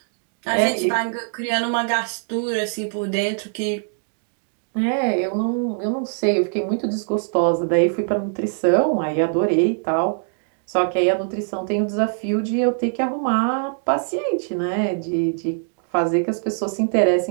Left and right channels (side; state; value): left; silent; digital silence